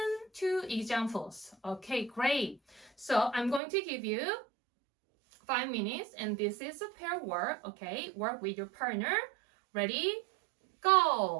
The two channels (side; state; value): left; drops out; at 3.6 s